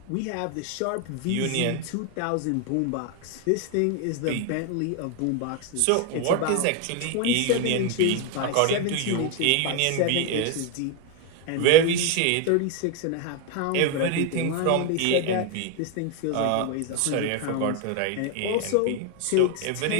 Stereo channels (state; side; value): different; both; correlation 0.01